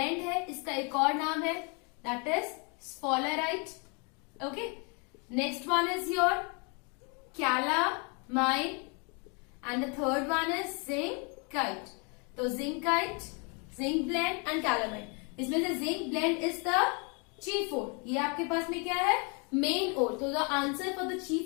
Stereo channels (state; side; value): quieter; right; 34.3 dB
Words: है इसका एक और नाम है, that is sphalerite. Okay, next one is your calamine and the third one is zincite. तो zincite, zinc blend and calamine. इसमें से zinc blend is the chief ore. ये आपके पास में क्या है? main ore. तो the answer for the